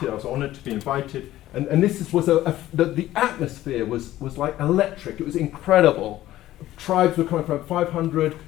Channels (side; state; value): right; quieter; 14.6 dB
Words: I was honoured to be invited, and this was the atmosphere was like electric. It was incredible. Tribes were coming from 500,